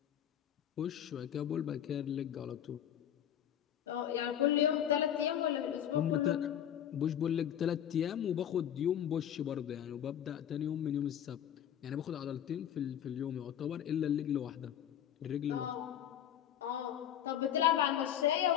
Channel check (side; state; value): right; quieter; 10.2 dB